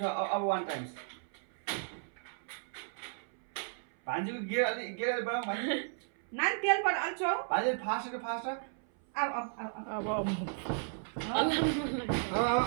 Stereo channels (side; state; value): left; silent; 55 dB below the other